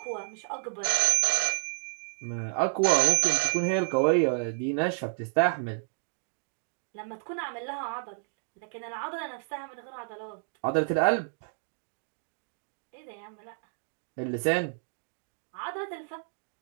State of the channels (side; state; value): left; silent; digital silence